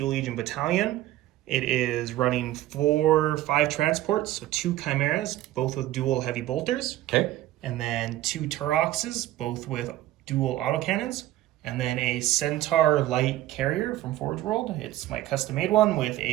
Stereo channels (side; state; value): left; quieter; 14.9 dB